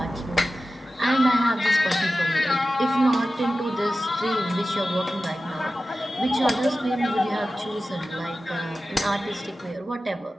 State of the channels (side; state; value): both; normal; correlation 0.94